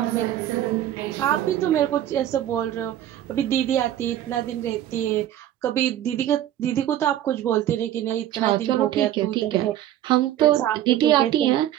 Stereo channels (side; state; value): left; quieter; 12.2 dB